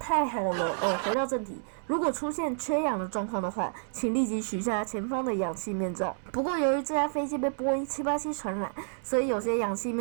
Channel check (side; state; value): left; silent; digital silence